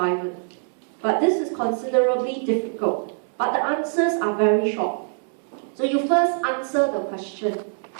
But this is considerably difficult. But the answers are very short. So you first answer the question.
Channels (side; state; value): left; silent; 63 dB below the other